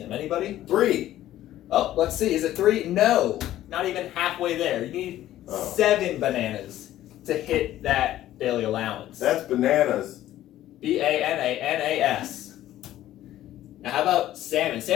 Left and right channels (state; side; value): quieter; right; 13.5 dB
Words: Anybody? 3. Oh, let's see. Is it 3? No, not even halfway there. You need 7 bananas to hit that daily allowance. That's bananas. B-A-N-A-N-A-S. Now how about salmon?